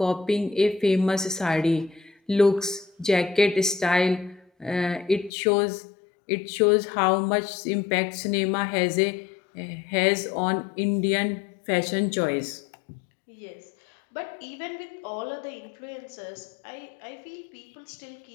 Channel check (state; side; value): drops out; right; at 5.3 s